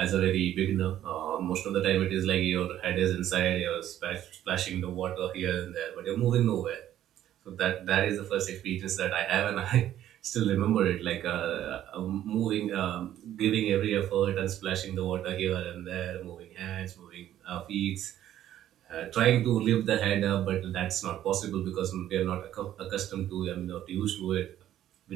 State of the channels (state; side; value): quieter; left; 12.0 dB